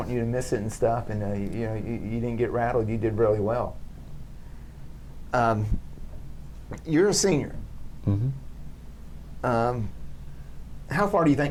you to miss it and stuff. And you didn't get rattled. You did really well. You're a senior. Mm-hmm. How far do you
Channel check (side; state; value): both; identical; correlation 1.00